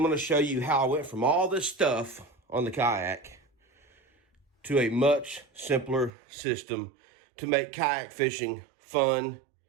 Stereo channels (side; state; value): left; drops out; at 6.1 s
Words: going to show you how I went from all this stuff on the kayak to a much simpler system to make kayak fishing fun,